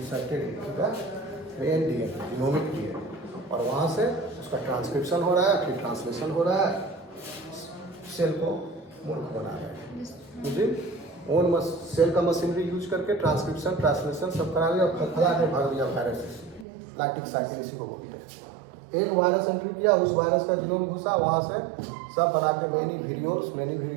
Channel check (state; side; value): drops out; left; at 16.7 s